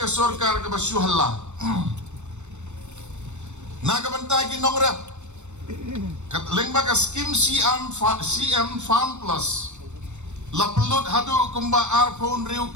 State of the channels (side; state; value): left; late; 0.83 ms